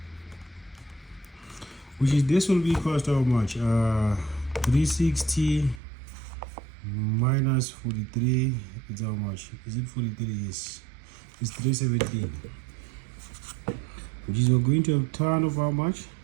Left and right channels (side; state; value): left; drops out; at 5.8 s